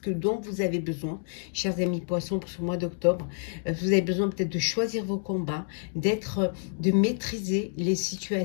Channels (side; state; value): right; silent; digital silence